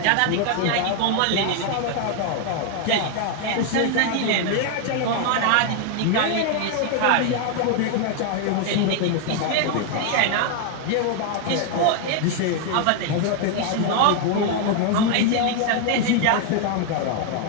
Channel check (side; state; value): both; different; correlation 0.00